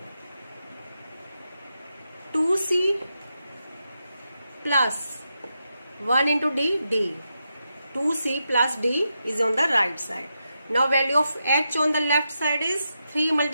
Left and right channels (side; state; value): both; inverted; correlation -0.86